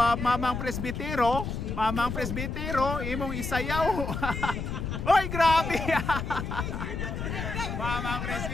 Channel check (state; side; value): noise; left; rumble, 4 dB below the sound